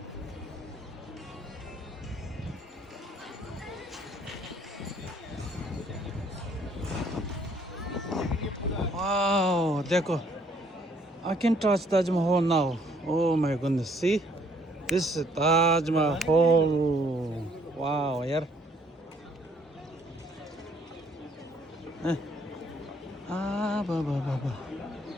Wow, देखो. I can touch Taj Mahal now. Oh my goodness, see? This is Taj Mahal. Wow, यार. Ba.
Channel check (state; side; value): normal; both; correlation 0.64